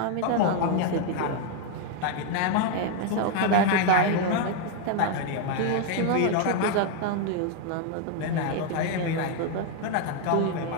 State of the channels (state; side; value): different; both; correlation 0.01